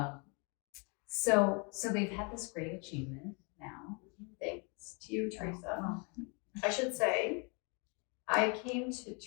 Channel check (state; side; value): quieter; right; 33.8 dB